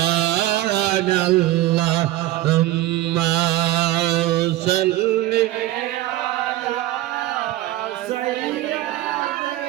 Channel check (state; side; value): quieter; left; 16.0 dB